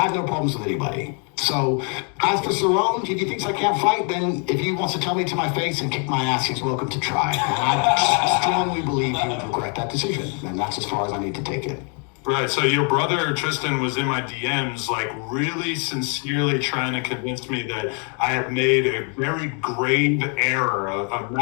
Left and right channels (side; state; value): right; quieter; 38.7 dB